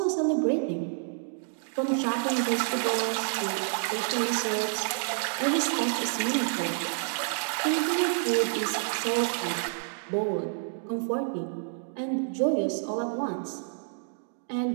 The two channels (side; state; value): left; silent; digital silence